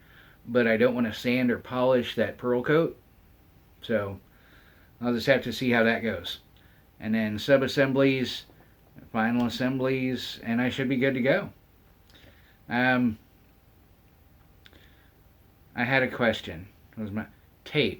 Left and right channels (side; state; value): both; identical; correlation 1.00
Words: but I don't want to sand or polish that pearl coat. So I'll just have to see how that goes. And then sub-assemblies, final assemblies, and I should be good to go. I had a question. It was my